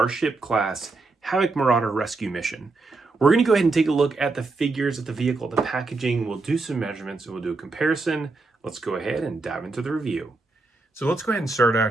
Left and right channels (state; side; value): quieter; left; 3.6 dB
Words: class Havoc Marauder rescue mission. We're going to go ahead and take a look at the figures of the vehicle, the packaging. We'll do some measurements and we'll do a comparison. Let's go ahead and dive into the review. So let's go ahead and start